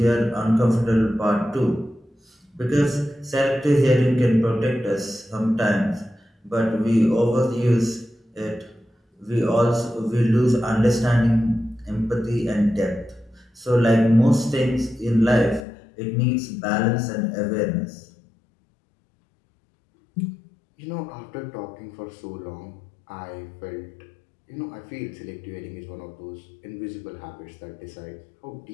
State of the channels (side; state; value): right; drops out; at 15.6 s